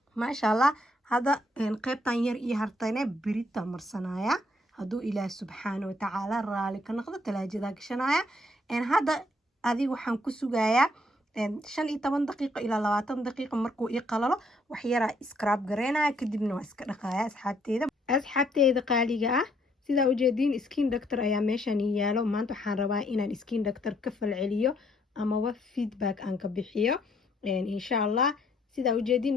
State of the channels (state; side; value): normal; both; correlation 0.69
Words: maasha Allah hada qaybtan yar iyo hartayna birita marsanaya hadduu ilaah subxaana watacaala raali ka noqdo talaajadaa gashanaya hadda adiga waxaan ku sugayaa 15 daqiiqo ilaa 20 daqiiqo markuu ii qalalo wax yaraa scrub gareynaya kadibna waa iska dhaqaya asxaabteeda qaaliga ah sidaa ujeediin skin doctor ayaa meeshan yaalo maanta waxaan rabaa inaan skin doctor ka falceliyo amaba feedback aan ka bixiyo insha allah sidaa ujeediin